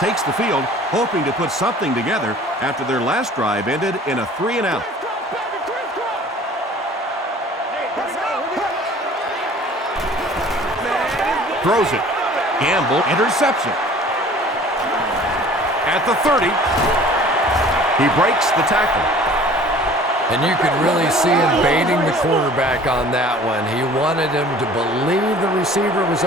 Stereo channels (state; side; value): normal; both; correlation 0.48